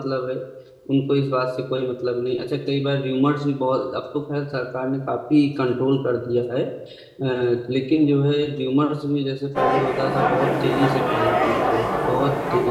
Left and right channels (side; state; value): both; identical; correlation 1.00